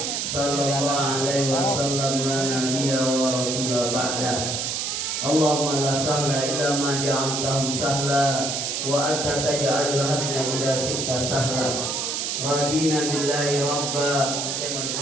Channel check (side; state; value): right; noise; hiss, 1 dB below the sound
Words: sallallahu alaihi wasallam la nabiyya wa rasula ba'dah. Allahumma la sahla illa ma ja'altahu sahla wa anta taj'alul hazna idza syi'ta sahla. Radina billahi rabba. Saya mau